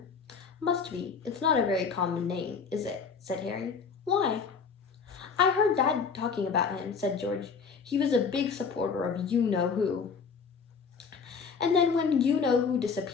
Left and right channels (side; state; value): right; quieter; 5.6 dB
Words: "Must be. It's not a very common name, is it?" said Harry. "Why?" "I heard Dad talking about him," said George. "He was a big supporter of you-know-who." "And then when you-know-who